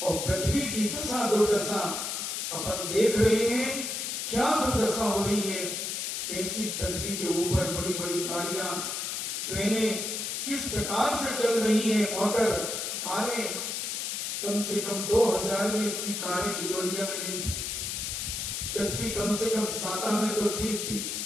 और पृथ्वी की दशा दुर्दशा अपन देख रहे हैं। क्या दुर्दशा हो रही है, कैसी पृथ्वी के ऊपर बड़ी बड़ी गाड़ियां, ट्रेनें किस प्रकार से चल रही हैं, मोटर, कारें। कम से कम 2000 में इतनी कारें बिजोरिया में नहीं थी। पृथ्वी कम से कम 7 में तो ठीक थी।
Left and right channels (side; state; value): left; noise; hiss, 3 dB below the sound